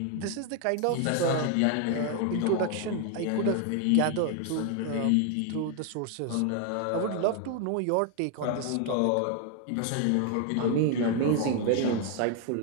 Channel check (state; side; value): different; both; correlation 0.00